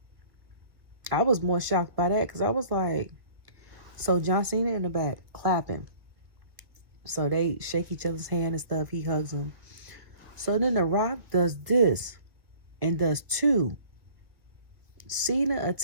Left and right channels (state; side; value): late; left; 1.8 ms